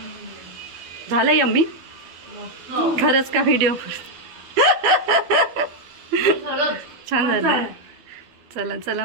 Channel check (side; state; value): left; late; 12 ms